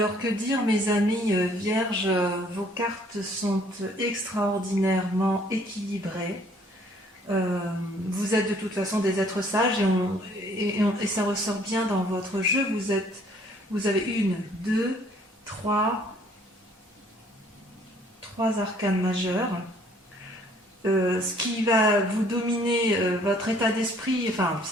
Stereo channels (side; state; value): both; normal; correlation 0.60